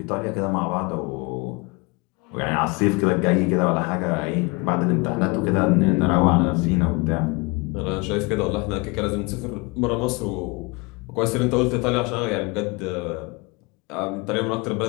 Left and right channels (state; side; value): quieter; right; 27.5 dB